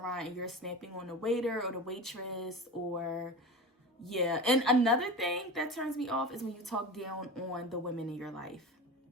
and you're snapping on the waiter or the waitress, or yeah. And another thing that turns me off is when you talk down on the women in your life.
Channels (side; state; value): both; normal; correlation 0.30